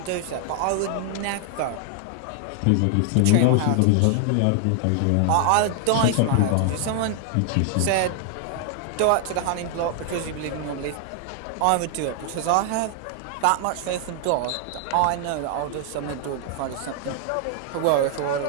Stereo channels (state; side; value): different; both; correlation 0.00